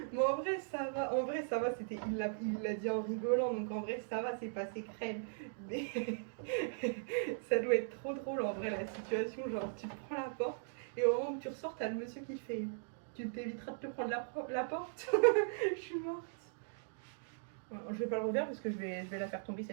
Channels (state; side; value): silent; left; digital silence